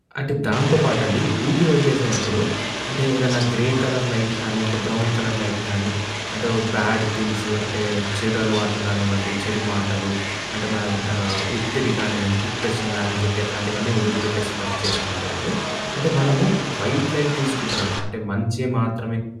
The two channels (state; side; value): identical; both; correlation 1.00